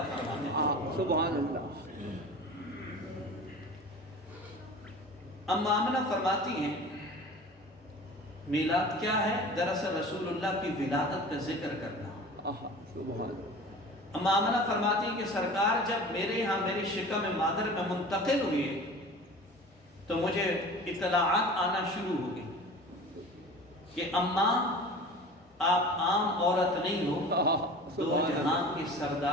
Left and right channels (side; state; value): both; normal; correlation 0.39